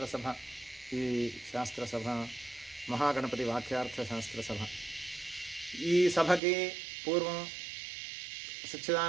ఈ శాస్త్రసభ మహాగణపతి వాక్యార్థ శాస్త్రసభ. ఈ సభకి పూర్వం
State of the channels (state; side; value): drops out; left; at 6.4 s